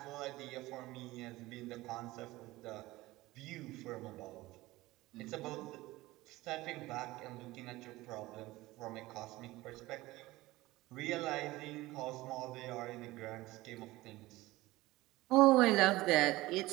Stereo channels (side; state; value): left; quieter; 18.8 dB